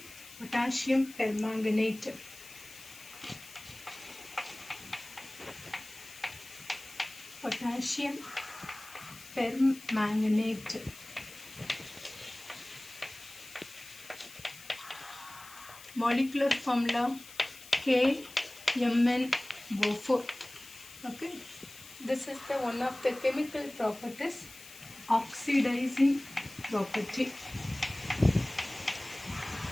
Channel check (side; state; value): left; noise; hiss, 17 dB below the sound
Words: potassium permanganate. Potassium permanganate. Molecular formula KMnO4. Okay, this is the one of the chemical properties, oxidizing property.